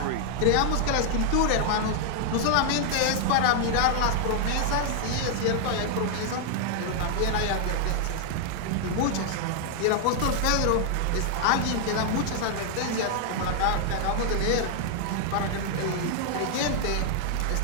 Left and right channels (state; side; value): different; both; correlation 0.00